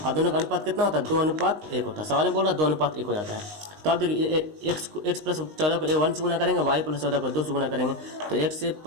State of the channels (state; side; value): late; left; 19 ms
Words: और दोनों का अनुपात कितना होता है 2:1 होता है, सवाल में बोल रहा है 2:1 हो जाता है। तो आप देखिए x प्लस 14 को 1 से गुना करेंगे, y प्लस 14 को 2 से गुना करेंगे, तो x से